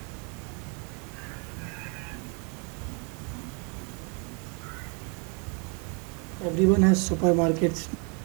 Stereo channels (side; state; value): left; quieter; 35.8 dB